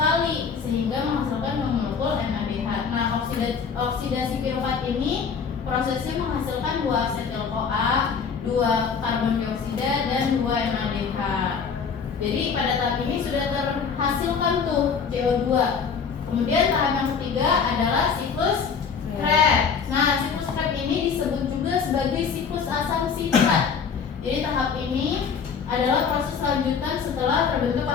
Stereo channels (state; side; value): quieter; right; 6.1 dB